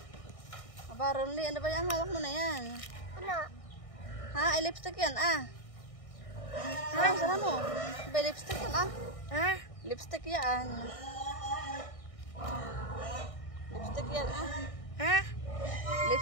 Aba, Ronly, ano ba yan? Hawak mo na yan. Wala. Ha? Ay, lipstick yan, ah. Sana mo. Ba, lipstick yan, ah. Ha? Lipstick yan. Lipstick yan, ah. Ha?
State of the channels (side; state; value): right; late; 1.6 ms